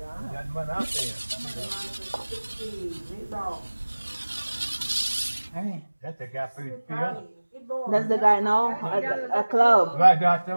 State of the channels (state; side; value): inverted; both; correlation -1.00